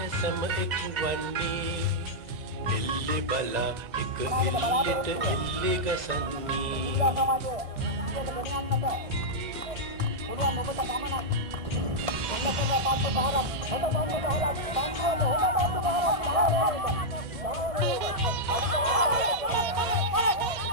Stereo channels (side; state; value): left; late; 1.6 ms